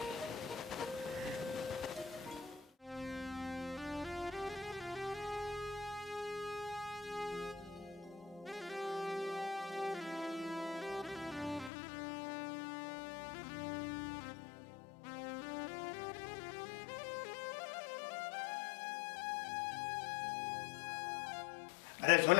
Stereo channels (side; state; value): right; drops out; at 11.7 s